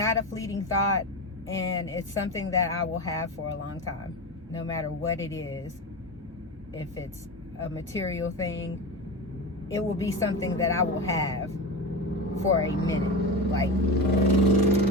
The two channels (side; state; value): both; normal; correlation 0.23